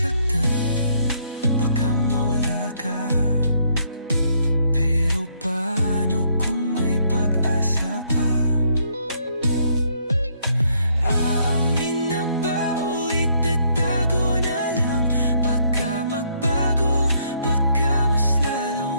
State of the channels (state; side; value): inverted; both; correlation -0.69